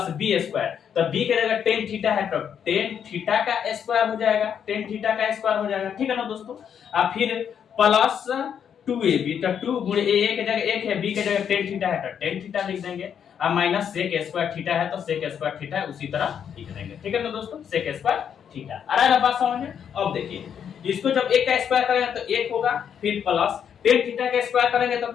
बी स्क्वायर, तो बी की जगह टेन थीटा है तो टेन थीटा का स्क्वायर हो जाएगा, टेन थीटा का स्क्वायर हो जाएगा। ठीक है ना दोस्तों, और फिर प्लस 2ab, तो 2 गुणे a की जगह 1 है, b की जगह टेन थीटा है तो टेन थीटा लिख देंगे, और माइनस सेक स्क्वायर थीटा है तो सेक स्क्वायर थीटा उसी तरह लिख देंगे। ठीक है ना दोस्तों, सेक स्क्वायर थीटा। आ रहा है ना बात समझ में। अब देखिए इसको जब 1 का स्क्वायर करेंगे तो 1 होगा, फिर प्लस टेन थीटा का स्क्वायर करेंगे तो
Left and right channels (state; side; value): quieter; right; 8.2 dB